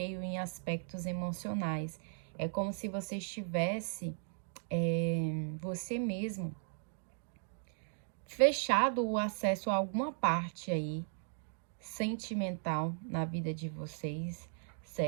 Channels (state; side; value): silent; left; digital silence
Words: em aspectos emocionais. É como se você estivesse, você mesmo, fechado o acesso a alguma parte aí sentimental na vida de vocês,